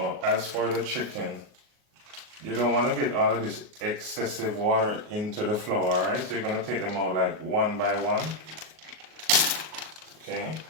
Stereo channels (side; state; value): left; late; 38 ms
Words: as for the chicken, you don't want to get all of this excessive water into the flour, alright? So you're going to take them out like one by one. Okay.